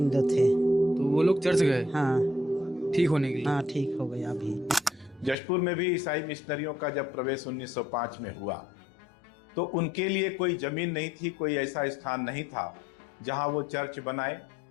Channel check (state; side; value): drops out; right; at 5.4 s